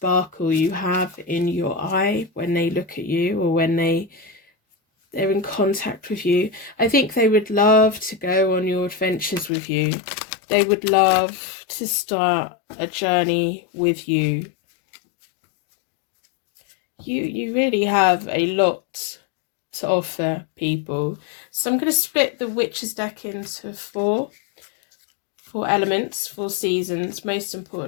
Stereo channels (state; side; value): drops out; right; at 9.5 s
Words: you have in your eye when they look at you, or when they're in contact with you. I think they would love to go on your adventures with you. They would love to start a journey with you. You really have a lot to offer people. So I'm going to split the Witches deck into four elements, 4 seasons, most